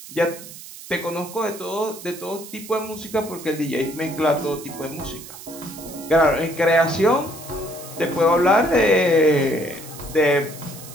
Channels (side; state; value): right; noise; hiss, 15 dB below the sound